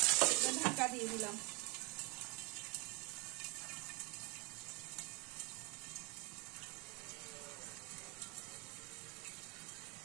ঢাকা দিয়ে দিলাম।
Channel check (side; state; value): left; quieter; 29.5 dB